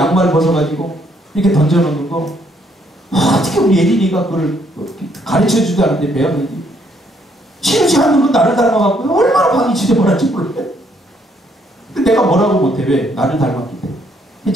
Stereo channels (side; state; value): both; normal; correlation 0.69